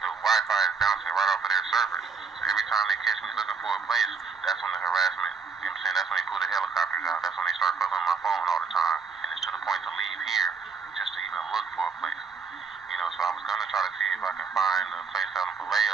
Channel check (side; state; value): left; quieter; 5.2 dB